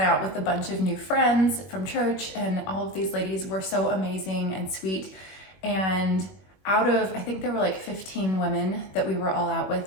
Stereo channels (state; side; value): late; right; 21 ms